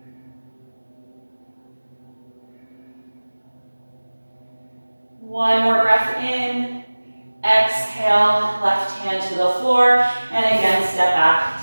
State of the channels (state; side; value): inverted; both; correlation -1.00